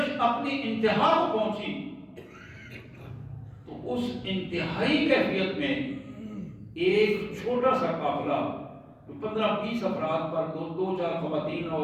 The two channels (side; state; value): both; identical; correlation 1.00